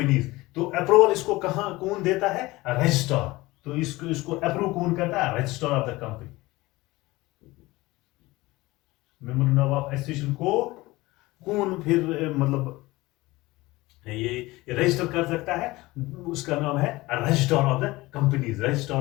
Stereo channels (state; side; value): quieter; right; 20.3 dB